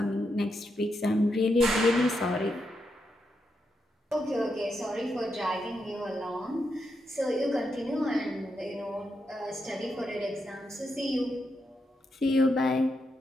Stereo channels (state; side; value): normal; both; correlation 0.83